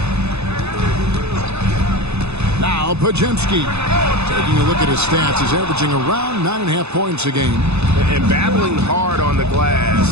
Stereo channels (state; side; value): late; left; 0.80 ms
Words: Now Pajemski. Taking a look at his stats, he's averaging around 9.5 points a game. And battling hard on the